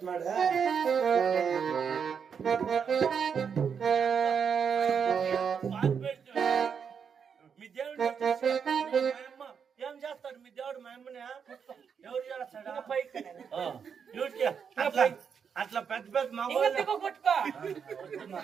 మీ దేవుడు ఏం చేస్తాడు మీ దేవుడు మా అమ్మని ఎవరు చేస్తాడా అట్లా పెద్ద పెద్ద మా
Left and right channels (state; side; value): quieter; left; 6.8 dB